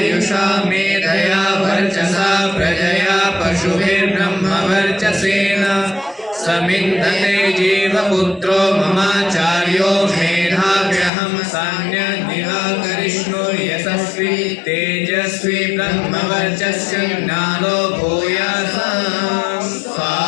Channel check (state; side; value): drops out; right; at 11.1 s